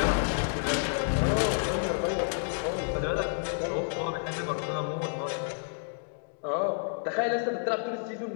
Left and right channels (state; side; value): silent; right; digital silence